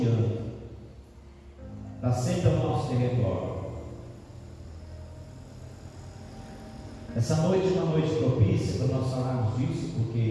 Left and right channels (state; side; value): identical; both; correlation 1.00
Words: está sempre ao nosso território. Essa noite é uma noite propícia para nós falarmos disso,